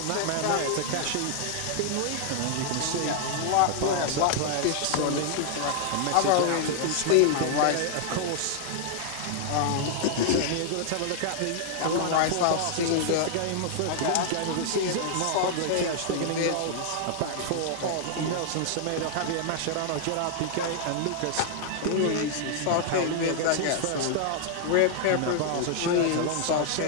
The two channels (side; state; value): both; different; correlation -0.01